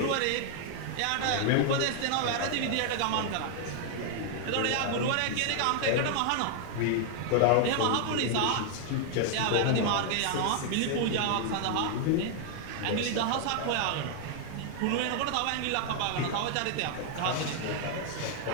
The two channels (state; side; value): different; both; correlation 0.00